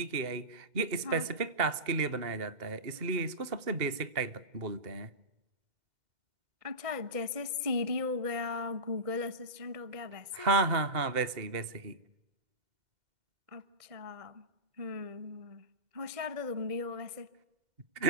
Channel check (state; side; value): late; left; 2.1 ms